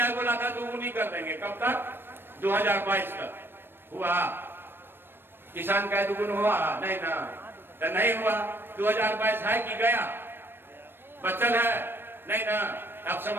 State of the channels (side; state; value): left; late; 0.10 ms